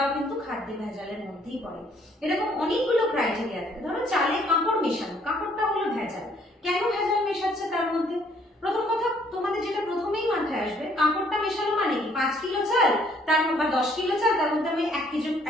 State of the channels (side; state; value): both; normal; correlation 0.63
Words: কিন্তু খাদ্যে ভেজালের মধ্যেই পড়ে। এরকম অনেকগুলো ক্রাইটেরিয়া থাকে। ধরো চালে কাঁকড় মেশানো, কাঁকড়টা হলো ভেজাল। কেন ভেজাল মেশাচ্ছে তার মধ্যে? প্রথম কথা তোমাদের যেটা প্রথমেই মাথায় আসবে, কাঁকড়টা মেশানো মানে কি? 5 কিলো চাল তার বা 10 কিলো চাল, তার মধ্যে আমি 1